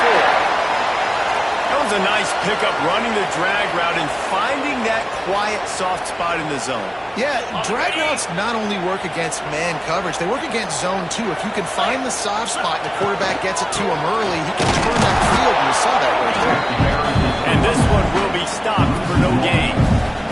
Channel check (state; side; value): identical; both; correlation 1.00